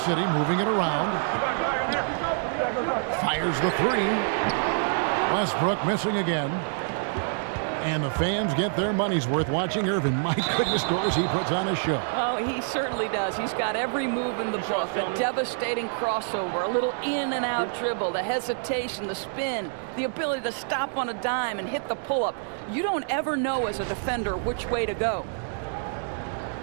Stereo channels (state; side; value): silent; left; digital silence